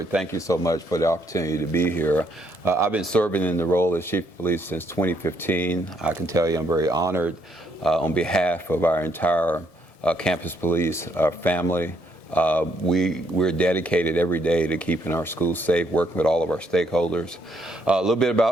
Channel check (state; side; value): late; right; 1.7 ms